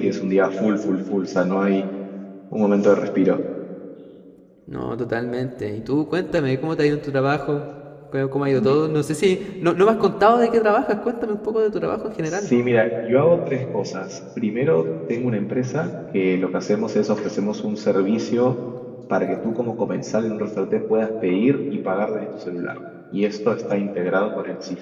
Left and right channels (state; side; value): identical; both; correlation 1.00